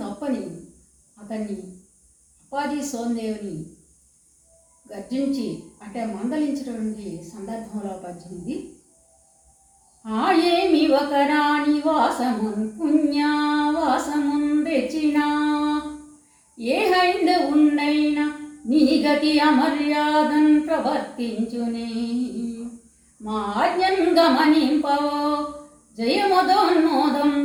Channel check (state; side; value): identical; both; correlation 1.00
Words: తప్పని అతన్ని అప్పాజీ సోందేవ్ని గర్జించి అంటే మందలించినటువంటి సందర్భంలో పద్యమిది. ఏమి ఒక రాణి వాసమున్ పుణ్యవాసమున్ తెచ్చినా, ఏ హైందవున్నైనా నీ గతి అమర్యాదన్ ప్రవర్తించునే, మా ఆజ్ఞన్ గమనింపవో